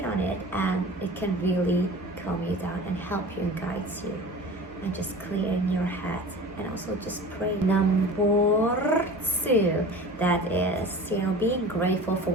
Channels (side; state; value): both; normal; correlation 0.38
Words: on it, and it can really calm you down and help you and guide you and just clear in your head, and also just pray. Number 2, that is being grateful for